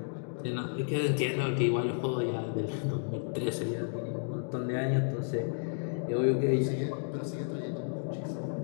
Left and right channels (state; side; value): silent; right; digital silence